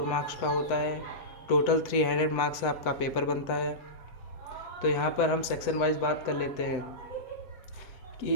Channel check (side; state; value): right; late; 7.9 ms